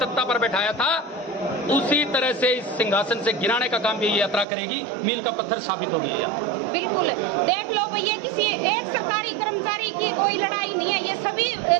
पर बैठाया था उसी तरह से इस सिंहासन से गिराने का काम भी ये यात्रा करेगी। मील का पत्थर साबित होगी ये यात्रा। बिल्कुल, देख लो भैया, किसी एक सरकारी कर्मचारी की कोई लड़ाई नहीं है, ये सभी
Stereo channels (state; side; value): drops out; left; at 4.5 s